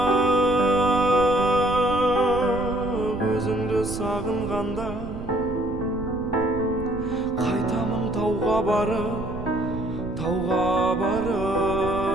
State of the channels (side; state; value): right; noise; rumble, 11 dB below the sound